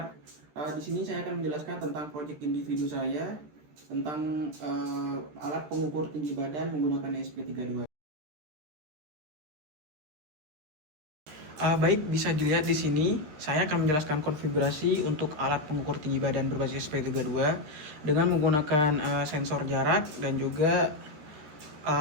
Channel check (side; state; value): left; late; 13 ms